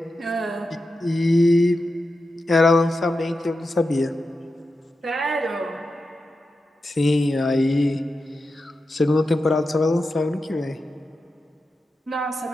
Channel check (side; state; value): both; normal; correlation 0.90